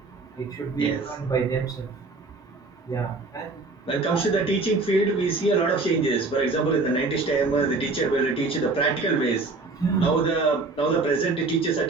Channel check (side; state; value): left; quieter; 3.6 dB